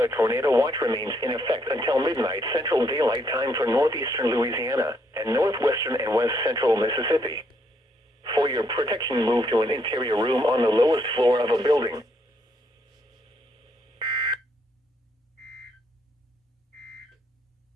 tornado watch remains in effect until midnight Central Daylight Time for northeastern Louisiana and northwestern and west central Mississippi. For your protection, move to an interior room on the lowest floor of a building.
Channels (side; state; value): both; normal; correlation 0.72